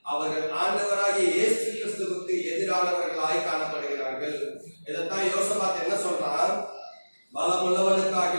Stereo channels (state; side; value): inverted; both; correlation -1.00